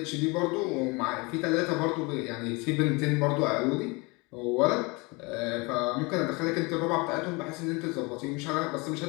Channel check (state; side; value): quieter; right; 27.1 dB